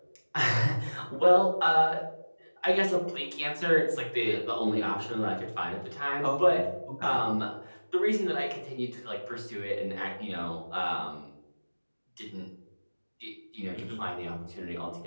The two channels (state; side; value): inverted; both; correlation -1.00